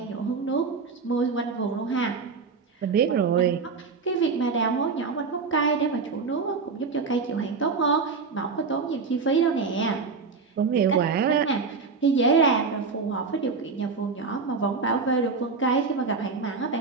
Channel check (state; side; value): quieter; left; 4.8 dB